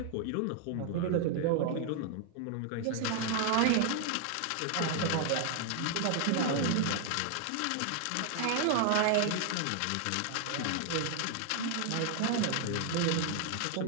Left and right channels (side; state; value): both; different; correlation 0.00